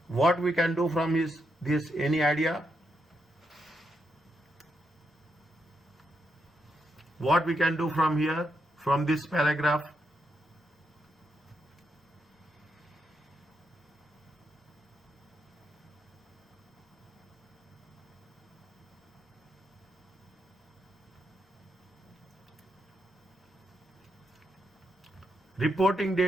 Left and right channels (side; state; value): both; normal; correlation 0.81